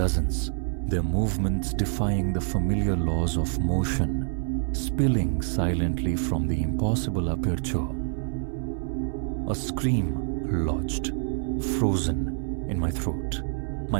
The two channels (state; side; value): silent; left; 59 dB below the other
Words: their movements defying the familiar laws of motion, spilling silently from the impossible aperture. A scream lodged, frozen in my throat.